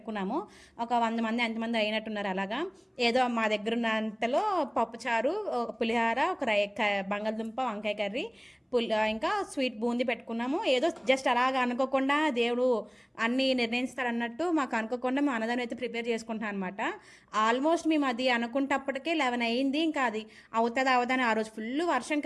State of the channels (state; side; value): identical; both; correlation 1.00